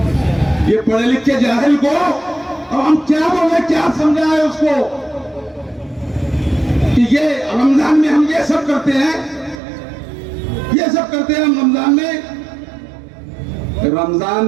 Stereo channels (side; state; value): left; drops out; at 9.6 s